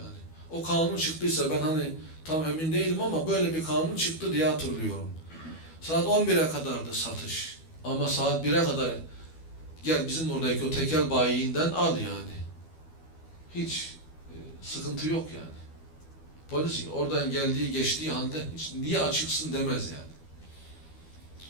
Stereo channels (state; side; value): late; right; 12 ms